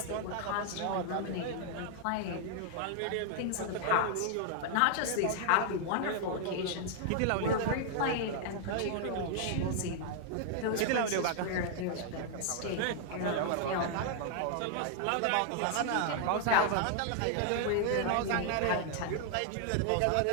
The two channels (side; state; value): both; different; correlation 0.00